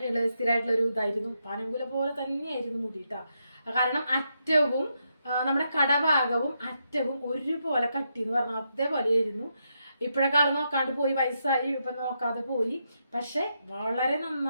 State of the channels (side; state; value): both; inverted; correlation -0.82